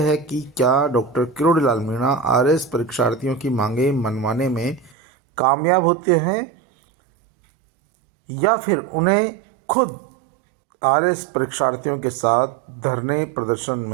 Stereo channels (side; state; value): left; drops out; at 5.0 s